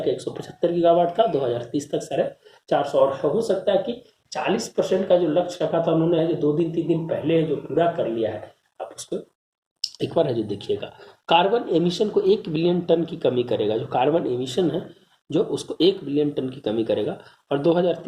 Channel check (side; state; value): both; identical; correlation 1.00